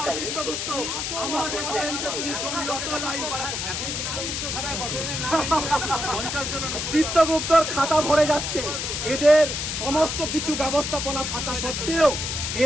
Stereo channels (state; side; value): noise; left; hiss, 3 dB below the sound